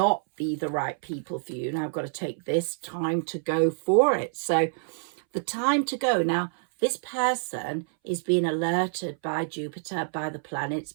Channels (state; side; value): silent; left; 60 dB below the other